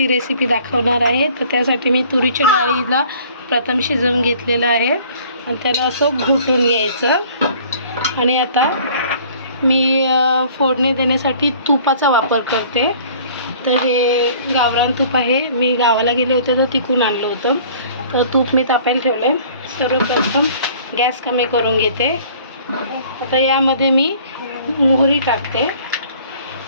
रेसिपी दाखवणार आहे। तर त्यासाठी मी तुरीच्या डाळीला प्रथम शिजवून घेतलेलं आहे आणि त्याला असं घुटून घ्यायचं। आणि आता मी फोडणी देण्यासाठी तुपाचा वापर करते। तर हे गावरान तूप आहे, मी गावाला गेले होते तर तिकून आणलं होतं। तर तूप मी तापायला ठेवलं। सर्वप्रथम गॅस कमी करून घेते। आता यामध्ये मी मोहरी टाकते।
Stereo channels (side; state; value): both; inverted; correlation -0.52